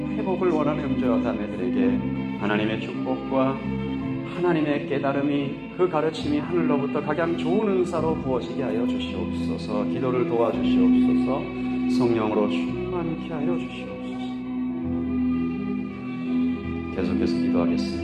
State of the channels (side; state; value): both; identical; correlation 1.00